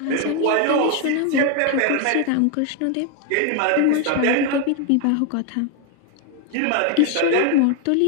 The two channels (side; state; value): both; different; correlation 0.01